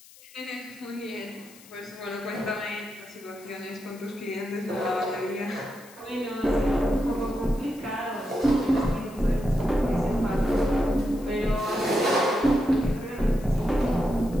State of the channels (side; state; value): left; noise; hiss, 22 dB below the sound